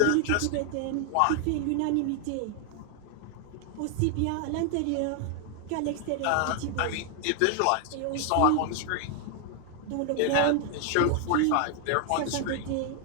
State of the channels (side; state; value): both; different; correlation 0.00